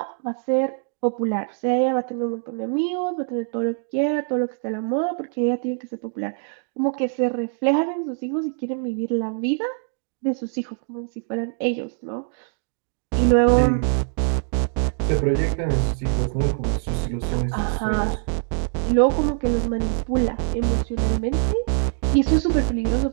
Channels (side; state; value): left; silent; digital silence